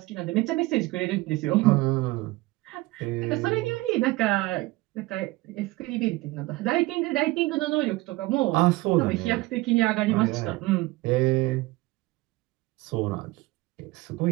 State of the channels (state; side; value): quieter; left; 20.5 dB